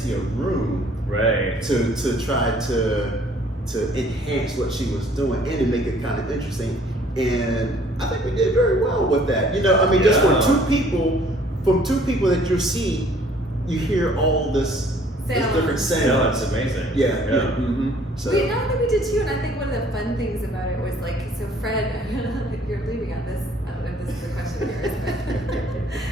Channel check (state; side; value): normal; both; correlation 0.58